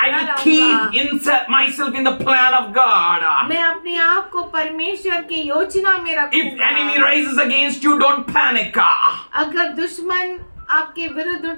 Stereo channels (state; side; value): inverted; both; correlation -1.00